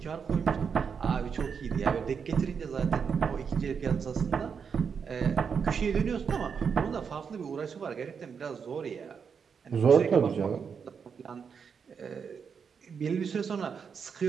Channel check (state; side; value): quieter; left; 6.4 dB